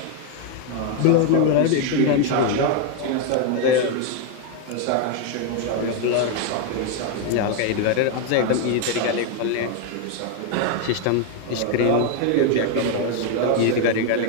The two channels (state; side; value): different; both; correlation 0.01